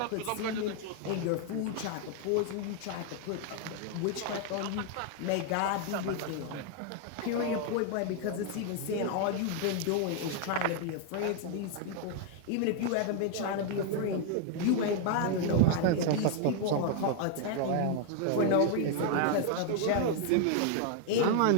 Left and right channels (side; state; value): both; different; correlation 0.00